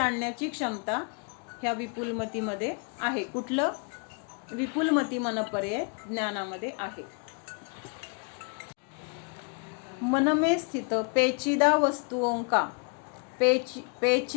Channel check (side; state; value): right; quieter; 39.1 dB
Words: क्षमता ह्या विपुलमतीमध्ये आहे. कुठलं, विपुलमती मनपर्यय ज्ञानामध्ये आहे. मन में स्थित पेचीदा वस्तुओं का